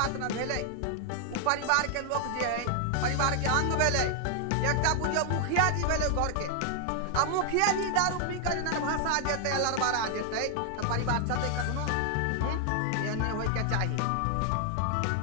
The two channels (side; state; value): both; different; correlation 0.00